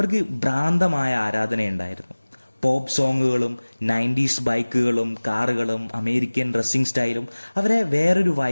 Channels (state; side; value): inverted; both; correlation -1.00